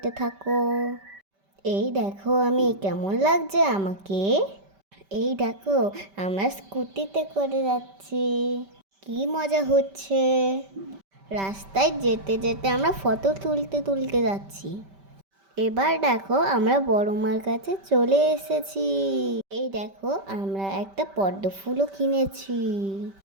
থাকো। এই দেখো আমি কেমন লাগছে আমাকে। এই দেখো আমরা স্কুটিতে করে যাচ্ছি, কি মজা হচ্ছে। রাস্তায় যেতে যেতে আমরা ফটো তুলতে তুলতে যাচ্ছি। এবার দেখো আমরা বড় মার কাছে চলে এসেছি। এই দেখো আমরা একটা পদ্ম ফুলও কিনেছি।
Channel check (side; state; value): left; late; 5.1 ms